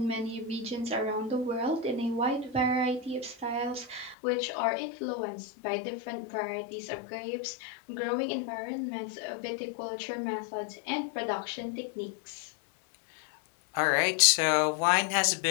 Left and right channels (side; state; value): right; drops out; at 4.2 s